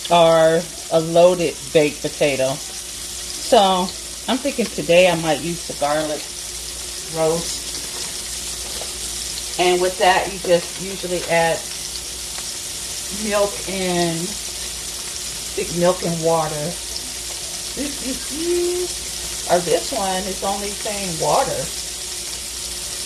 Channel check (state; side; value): identical; both; correlation 1.00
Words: or a loaded baked potato. So I'm thinking today I might use the garlic roast. And with that, you just usually add milk and water. Or this one is only saying water.